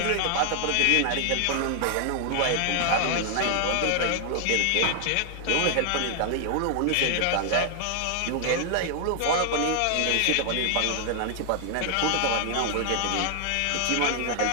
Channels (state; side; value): different; both; correlation 0.00